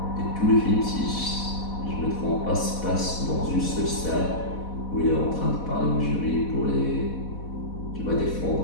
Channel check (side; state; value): right; late; 4.1 ms